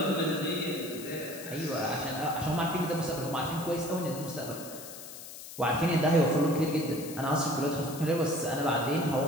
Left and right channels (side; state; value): left; noise; hiss, 13 dB below the sound